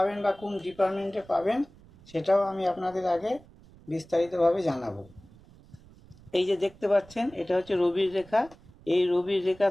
বা কোন ডিপার্টমেন্টে পাবেন সেটাও আমি আপনাদের আগে বিস্তারিতভাবে জানাবো। এই যে দেখতে পাচ্ছেন, এটা হচ্ছে রবির রেখা। এই রবির রেখা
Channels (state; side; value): noise; right; rumble, 24 dB below the sound